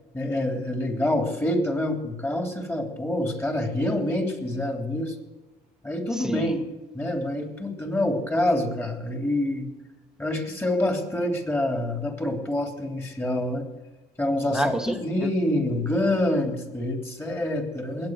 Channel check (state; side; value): normal; both; correlation 0.75